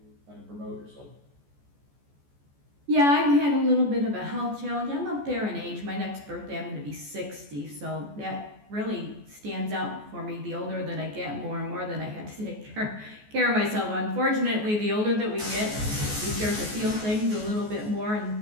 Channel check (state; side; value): late; left; 14 ms